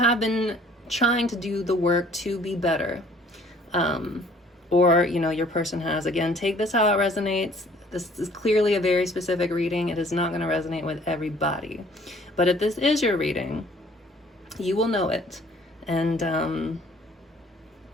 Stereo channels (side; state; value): both; normal; correlation 0.56